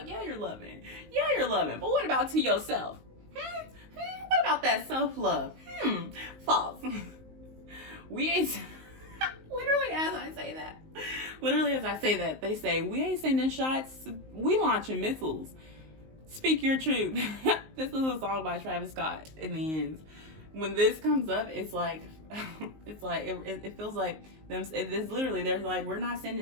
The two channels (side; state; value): left; late; 19 ms